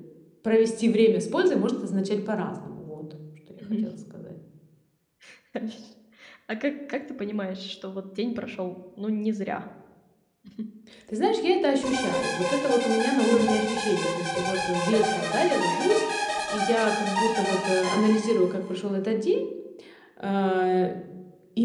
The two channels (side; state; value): both; identical; correlation 1.00